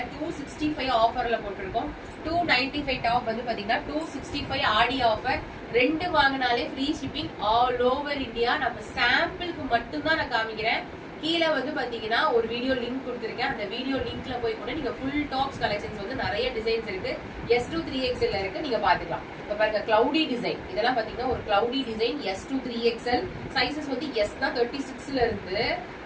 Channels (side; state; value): both; identical; correlation 1.00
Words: 265 ஆஃபர்ல போட்டிருக்கோம். 295 டாப் வந்து பாத்தீங்கன்னா 265 ஆடி ஆஃபர். ரெண்டு வாங்கினாலே free shipping all over India. நம்ம சாம்பிளுக்கு மட்டும் தான் நான் காமிக்கிறேன். கீழே வந்து பாத்தீங்கன்னா ஒரு வீடியோ லிங்க் கொடுத்துருக்கேன். அந்த வீடியோ லிங்க்ல போய் கூட நீங்க ஃபுல் டாப்ஸ் கலெக்ஷன்ஸ் வந்து நிறைய டிசைன்ஸ் இருக்கு. S2 3XL இருக்கு, நீங்க பாத்துக்கலாம். இப்ப பாருங்க கிளவுடி டிசைன், இதெல்லாம் பாத்தீங்கன்னா ஒரு cloudy design S2 3XL. Sizes வந்து S தான் 36ல இருந்து